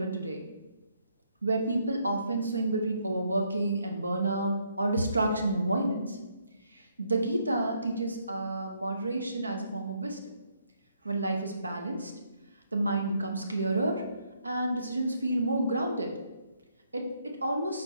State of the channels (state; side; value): inverted; both; correlation -0.73